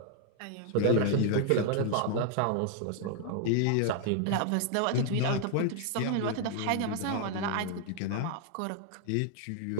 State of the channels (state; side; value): different; both; correlation 0.00